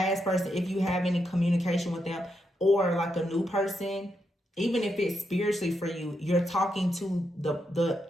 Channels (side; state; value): both; normal; correlation 0.82